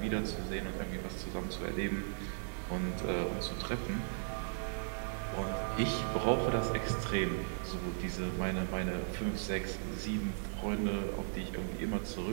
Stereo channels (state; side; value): silent; left; digital silence